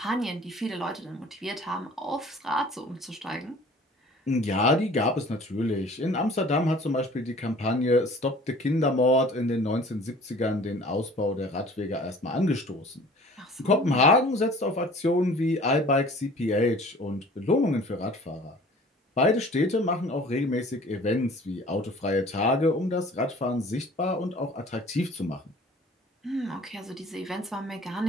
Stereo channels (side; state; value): both; normal; correlation 0.48